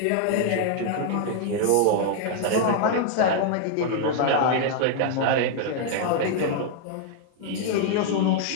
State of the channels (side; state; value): both; different; correlation 0.00